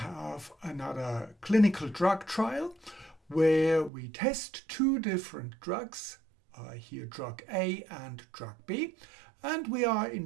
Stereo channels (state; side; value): drops out; left; at 3.9 s